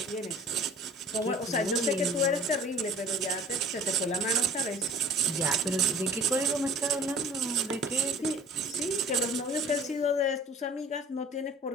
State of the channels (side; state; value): both; normal; correlation 0.50